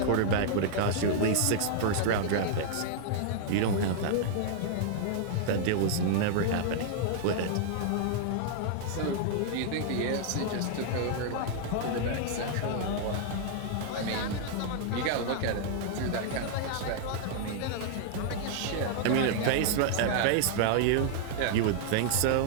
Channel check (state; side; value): different; both; correlation -0.01